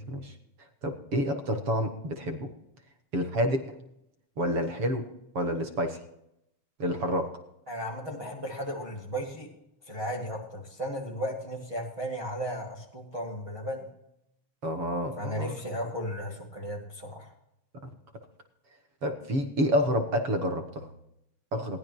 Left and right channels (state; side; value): late; left; 7.1 ms